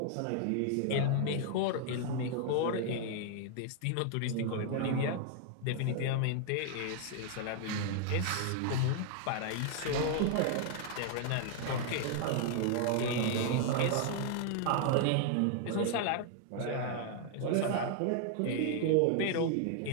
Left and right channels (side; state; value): both; different; correlation 0.00